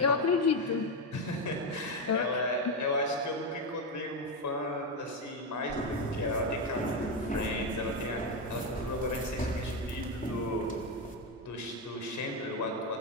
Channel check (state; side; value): normal; both; correlation 0.09